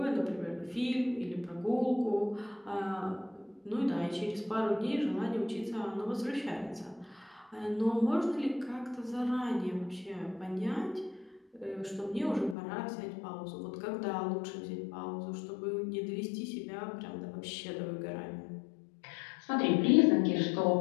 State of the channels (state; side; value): drops out; right; at 12.6 s